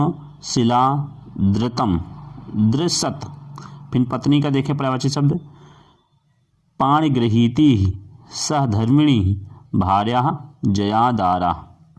शिला, धृतम, दृसत। फिर पत्नी का देखें पर्यायवाची शब्द पाणिगृहीति, सहधर्मिणी, भार्या, जयादारा।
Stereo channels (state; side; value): identical; both; correlation 1.00